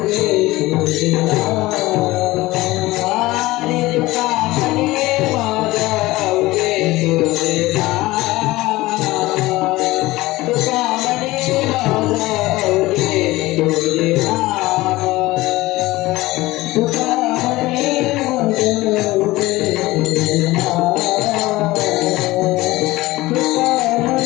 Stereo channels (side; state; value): right; quieter; 19.0 dB